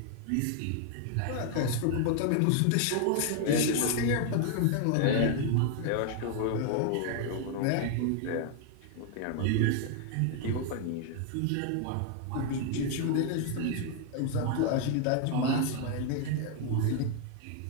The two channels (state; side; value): different; both; correlation 0.00